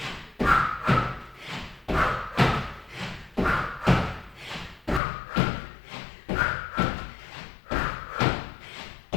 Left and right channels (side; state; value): right; drops out; at 5.0 s